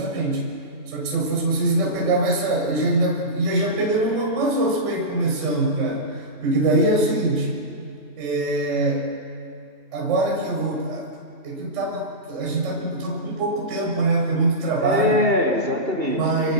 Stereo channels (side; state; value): left; late; 3.3 ms